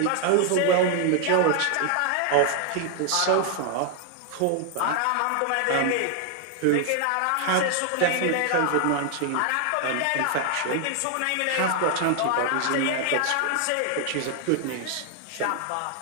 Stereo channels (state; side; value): different; both; correlation 0.00